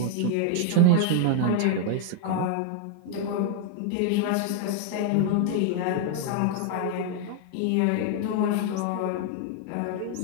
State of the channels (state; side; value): different; both; correlation 0.00